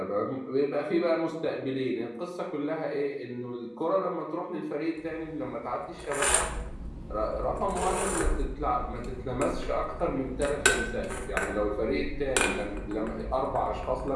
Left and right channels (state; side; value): identical; both; correlation 1.00